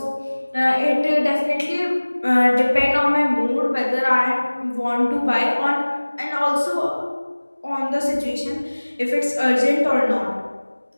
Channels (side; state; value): both; inverted; correlation -1.00